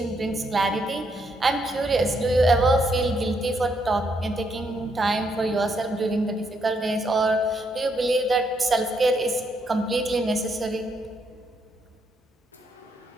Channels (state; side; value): normal; both; correlation 0.76